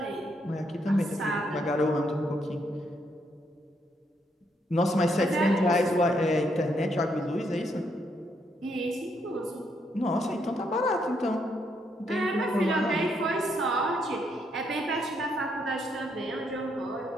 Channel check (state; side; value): normal; both; correlation 0.75